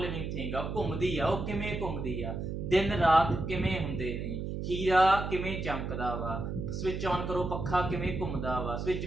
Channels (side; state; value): right; noise; hum, 4 dB below the sound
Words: लिविंग थिंग आ, घूमदी आ, ਉਹ ਕਿਵੇਂ ਘੁੰਮਦੀ ਆ, ਦਿਨ ਰਾਤ ਕਿਵੇਂ ਹੁੰਦੇ ਨੇ, ਹੀਰਾ ਕਿਵੇਂ ਚਮਕਦਾ ਵਾ, ਸਵਿਚ ਆਨ ਕਰੋ ਪੱਖਾ ਕਿਵੇਂ ਘੁੰਮਦਾ ਵਾ, ਸਵਿਚ